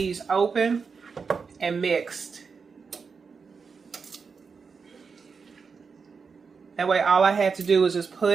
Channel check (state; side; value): quieter; left; 5.3 dB